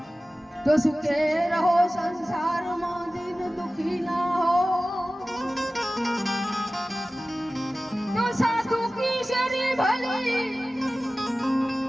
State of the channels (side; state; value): both; normal; correlation 0.96